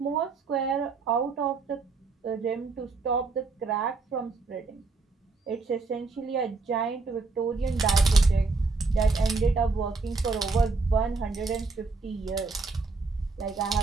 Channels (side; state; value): left; quieter; 4.0 dB